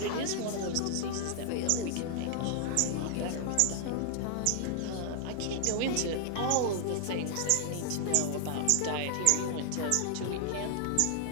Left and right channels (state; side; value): different; both; correlation 0.00